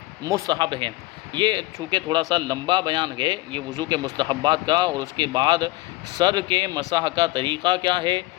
مستحب ہیں۔ یہ چونکہ تھوڑا سا لمبا بیان ہے یہ وضو کے مستحبات کا، اور اس کے بعد سر کے مسح کا طریقہ کیا ہے،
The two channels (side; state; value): right; quieter; 19.8 dB